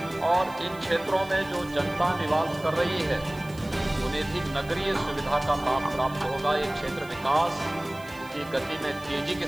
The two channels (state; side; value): noise; right; hiss, 22 dB below the sound